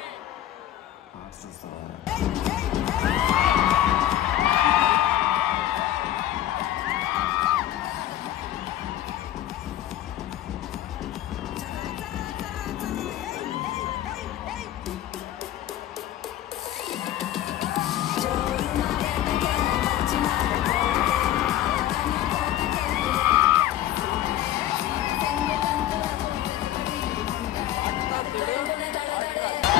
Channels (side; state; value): right; quieter; 12.8 dB